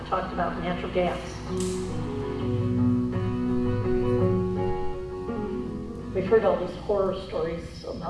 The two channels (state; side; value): identical; both; correlation 1.00